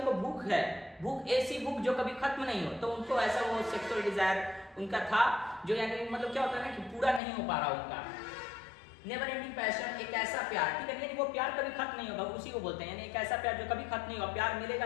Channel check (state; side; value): drops out; right; at 7.2 s